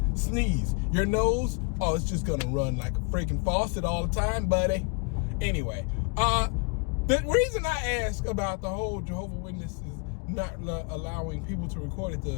sneeze, your nose, oh, it's just gonna run like a freaking faucet all the time, buddy. Anyway, the reason I ask about the whole Jehovah Witnesses not allowing people to record at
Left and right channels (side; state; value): right; quieter; 32.2 dB